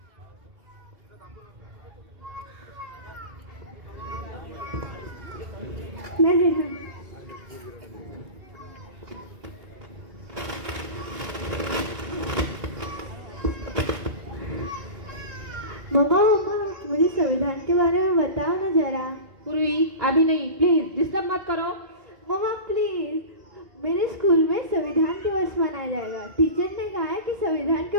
नहीं मम्मा मम्मा, मुझे संविधान के बारे में बताओ ना जरा। पूर्वी अभी नहीं, प्लीज डिस्टर्ब मत करो। मम्मा प्लीज, मेरे स्कूल में संविधान दिवस मनाया जाएगा। टीचर ने कहा है कि संविधान के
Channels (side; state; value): left; late; 2.8 ms